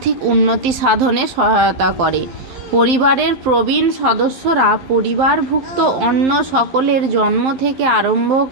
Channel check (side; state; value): left; late; 12 ms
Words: উন্নতি সাধনে সহায়তা করে। পরিবারের প্রবীণ সদস্যরা পরিবারভুক্ত অন্য সকলের জন্ম থেকে আরম্ভ